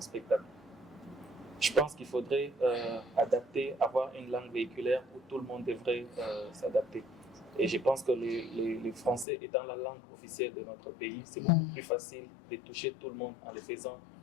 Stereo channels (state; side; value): drops out; right; at 9.2 s